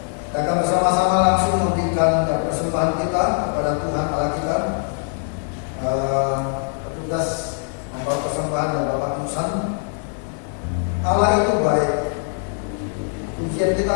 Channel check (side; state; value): right; silent; 59 dB below the other